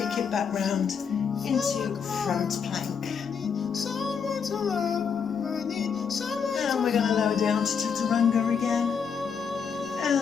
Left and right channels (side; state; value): right; quieter; 6.5 dB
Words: it back round into front plank. And we're going to lower down to chaturanga again.